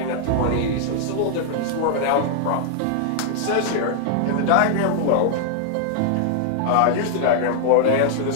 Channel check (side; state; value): both; different; correlation -0.01